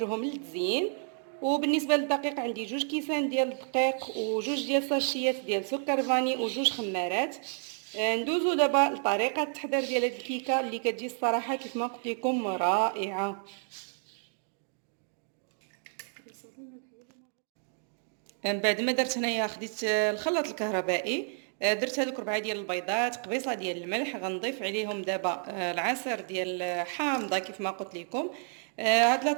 للتزيين. وبالنسبه للدقيق عندي 2 كيسان ديال الدقيق و2 ديال ساشيات ديال سكر فاني و2 خمارات. ندوزو دابا لطريقه التحضير ديال هاد الكيكه اللي كتجي الصراحه كيف ما قلت لكم رائعه. من بعد ما درت هنايا خديت الخلاط الكهربائي. درت هذوك 4 ديال البيضات، قبيصه ديال الملح. غنضيف عليهم دابا العصير ديال حامضه كيف ما قلت لكم. هاد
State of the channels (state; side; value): silent; left; 57 dB below the other